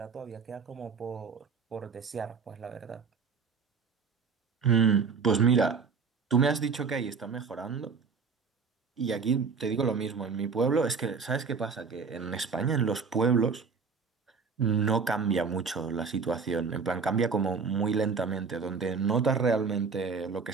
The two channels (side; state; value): left; quieter; 5.3 dB